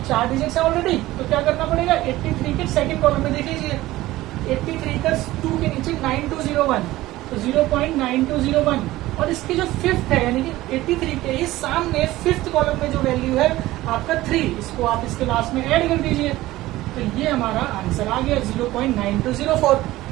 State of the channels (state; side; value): quieter; left; 17.0 dB